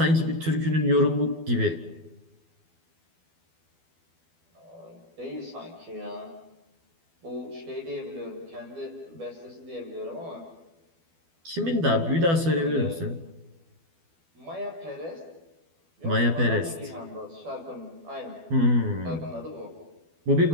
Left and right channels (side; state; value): left; late; 12 ms